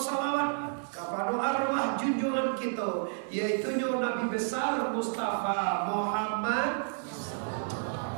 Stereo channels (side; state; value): left; silent; digital silence